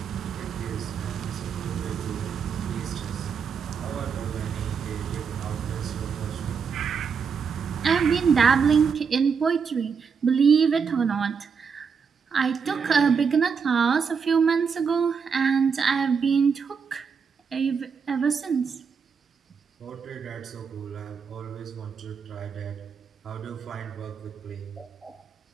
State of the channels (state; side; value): quieter; left; 6.1 dB